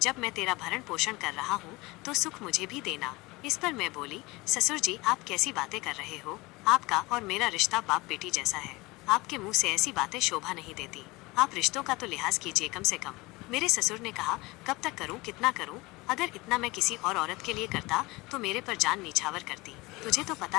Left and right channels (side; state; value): right; quieter; 22.7 dB